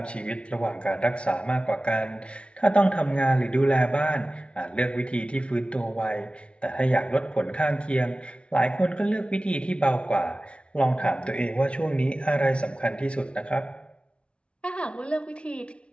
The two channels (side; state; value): right; late; 0.059 ms